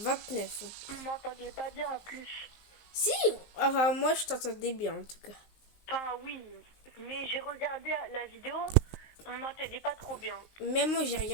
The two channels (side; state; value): right; late; 19 ms